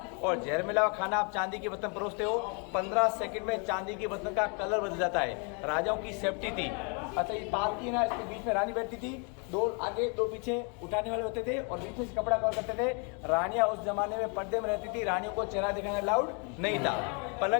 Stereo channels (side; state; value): right; quieter; 35.8 dB